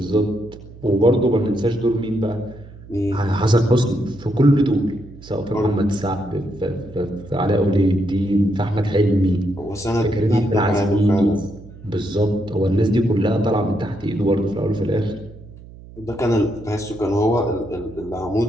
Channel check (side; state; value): right; noise; hum, 19 dB below the sound